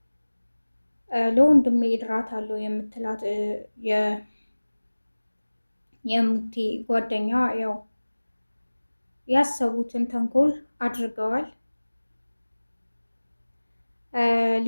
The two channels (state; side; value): inverted; both; correlation -1.00